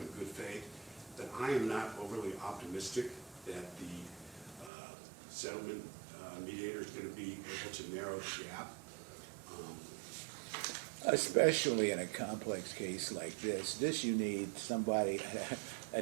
good faith, but I am not overly optimistic that the settlement mediator is going to be able to narrow the gap. Especially in a complex case like this you need somebody, a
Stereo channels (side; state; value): left; drops out; at 4.7 s